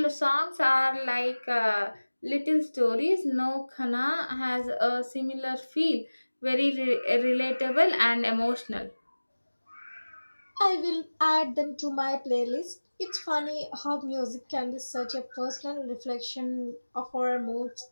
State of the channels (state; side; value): inverted; both; correlation -1.00